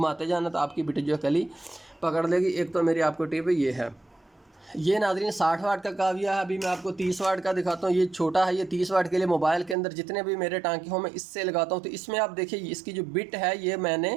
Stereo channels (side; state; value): left; drops out; at 9.8 s